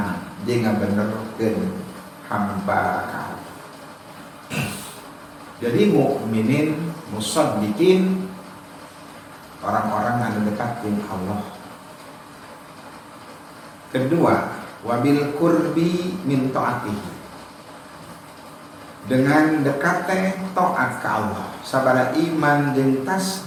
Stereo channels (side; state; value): both; identical; correlation 1.00